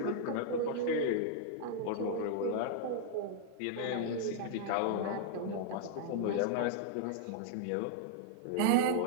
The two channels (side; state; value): both; different; correlation -0.01